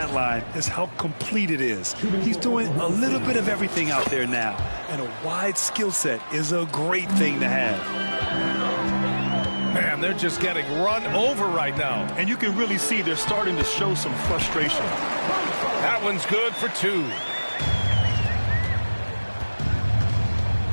line is how complete it is. He's doing a little bit of everything out there now, and a wide skill set is a great thing to have. Man, they're just getting run over right now. And you can really see they're starting to show some frustration. That one's good for two.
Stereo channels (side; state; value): both; inverted; correlation -1.00